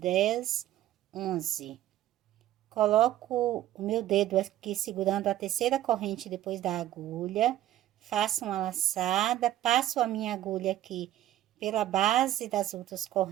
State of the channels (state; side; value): quieter; left; 13.3 dB